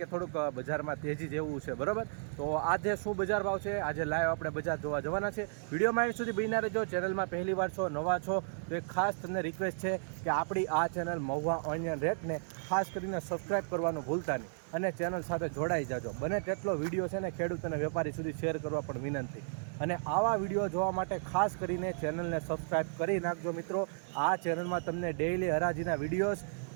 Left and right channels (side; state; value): left; silent; digital silence